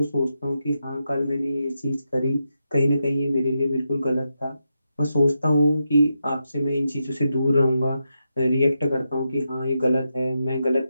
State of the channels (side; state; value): both; inverted; correlation -0.86